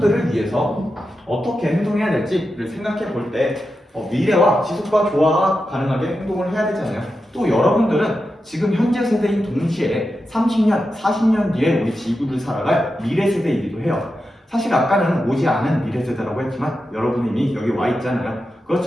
위해서 어떻게 행동해야 될지를 생각해 볼 때 미래와 지속과 조화가 가능하게 행동을 해야 되잖아요. 또 여러분들은 지금 현재 세대인 동시에 30년, 40년 뒤에 우리 지구를 살아갈 미래 세대이기도 해요. 사실 아까는 오지 않은 미래 세대라고 했지만 여러분이 이미 여기 와 있잖아요.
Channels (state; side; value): normal; both; correlation 0.89